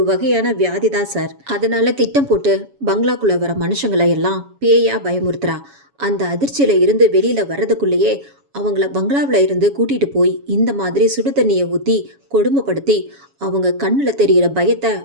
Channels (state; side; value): late; left; 7.2 ms